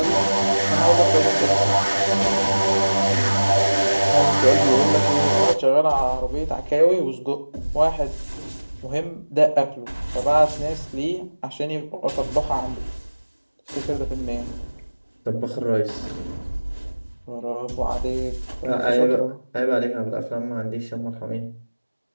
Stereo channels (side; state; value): both; inverted; correlation -1.00